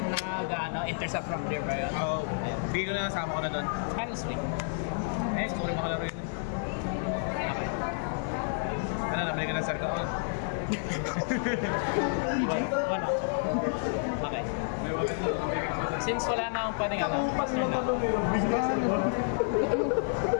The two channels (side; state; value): right; silent; 58 dB below the other